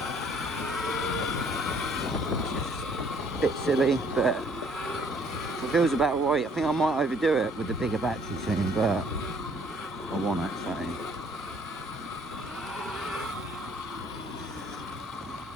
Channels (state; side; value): normal; both; correlation 0.61